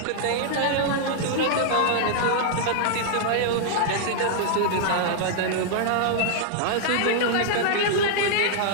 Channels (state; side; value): different; both; correlation -0.01